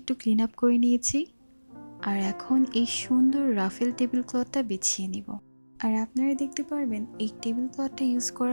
ক্লিন আপ করে নিয়েছি, আর এখন এই সুন্দর রাফেল টেবিল ক্লথটা বিছিয়ে নিব। আর আপনারা দেখতে পারবেন এই টেবিল ক্লথটা ইউজ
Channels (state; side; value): inverted; both; correlation -1.00